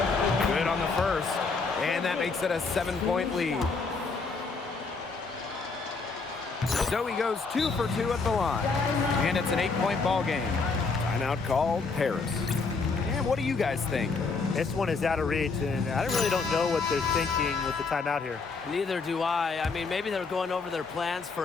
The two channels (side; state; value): right; quieter; 4.4 dB